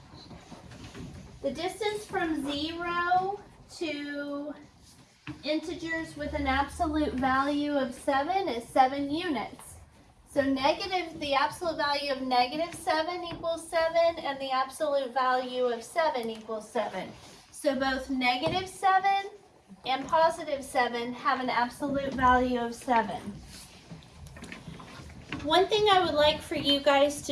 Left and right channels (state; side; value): identical; both; correlation 1.00